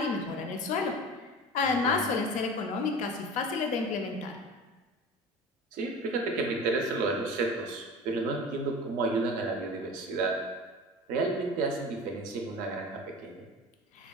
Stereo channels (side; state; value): both; normal; correlation 0.35